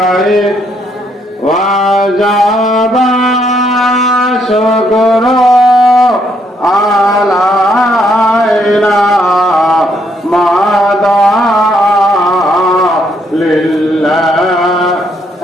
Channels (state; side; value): normal; both; correlation 0.72